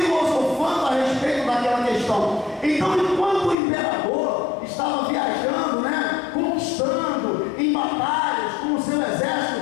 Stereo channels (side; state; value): right; drops out; at 3.6 s